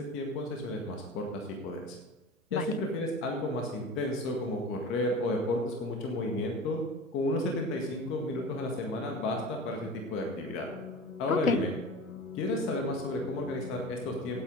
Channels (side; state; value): both; normal; correlation 0.34